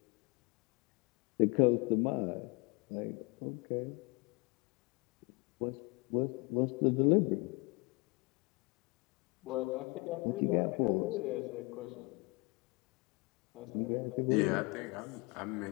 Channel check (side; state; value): right; quieter; 28.3 dB